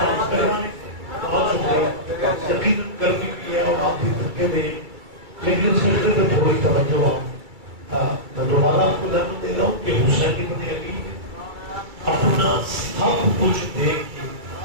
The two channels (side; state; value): left; late; 2.3 ms